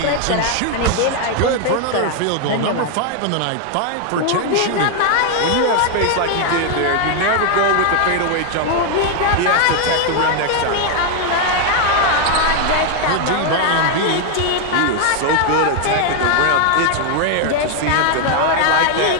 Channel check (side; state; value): both; different; correlation 0.00